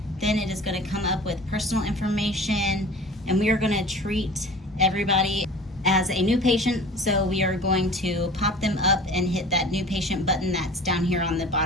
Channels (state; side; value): normal; both; correlation 0.41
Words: Then it is gonna come up with personal information, and we are gonna treat everybody as a new patient. So we are going to pop them up and hit that new patient button that's down here on the